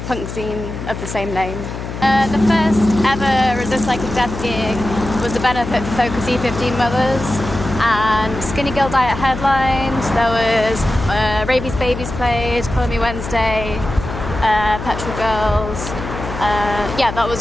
punk zine of the same name. The first ever Resist Psychic Death gig was the benefit for Focus E15 Mothers, and Skinny Girl Diet headlined. There was Rabies Babies played, Call Me Wednesday, Petrol Girls. That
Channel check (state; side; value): noise; left; hum, 8 dB below the sound